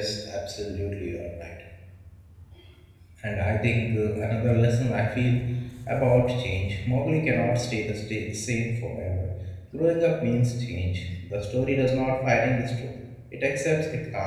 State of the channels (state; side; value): identical; both; correlation 1.00